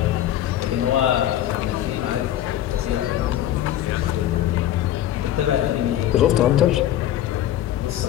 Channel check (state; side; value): quieter; right; 12.3 dB